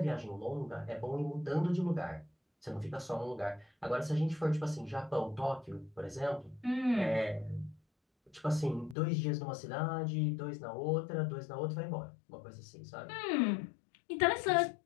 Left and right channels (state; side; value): drops out; right; at 9.0 s